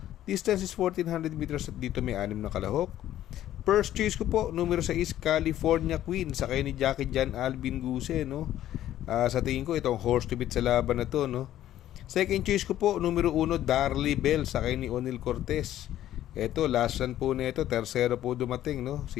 Distance is 1400 meters at dito may 6 na kalahok. First choice ko po, numero 6, California Queen, sakay ni Jackie Jan Alvin Guse, no? Sa tingin ko, itong horse to beat sa laban na to, no? Second choice ko po, numero 1, Darley Bell, sakay ni Onil Cortez. Ito, last run po nito, tersero po dumating, no?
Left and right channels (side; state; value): right; quieter; 12.6 dB